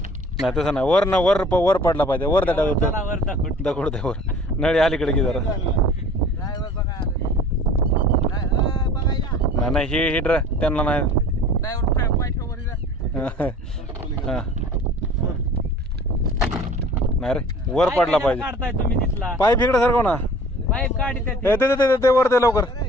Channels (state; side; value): normal; both; correlation 0.47